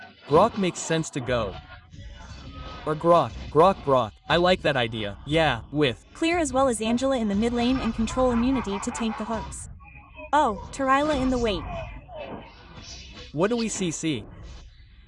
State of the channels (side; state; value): both; identical; correlation 1.00